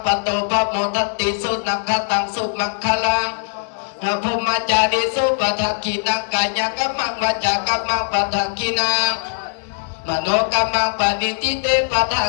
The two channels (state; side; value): silent; right; 66 dB below the other